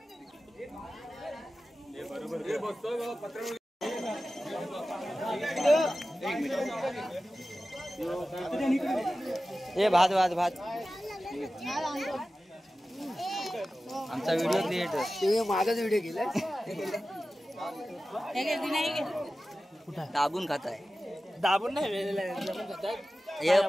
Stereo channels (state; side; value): normal; both; correlation 0.95